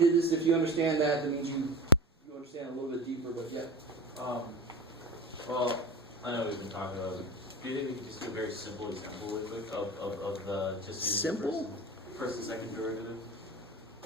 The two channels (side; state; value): both; normal; correlation 0.31